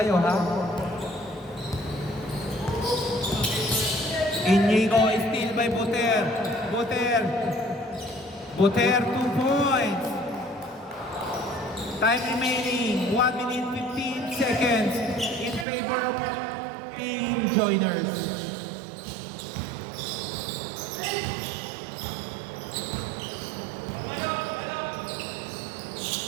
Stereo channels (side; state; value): left; drops out; at 15.7 s